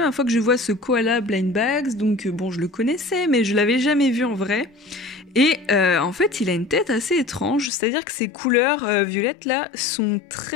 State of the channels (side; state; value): right; drops out; at 7.7 s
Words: fois que je vois ce koala blind bags, donc bon, je le connaissais, mais je l'avais jamais vu en vrai. Et en fait, il a une tête assez étrange, c'est-à-dire que ses couleurs violettes là sont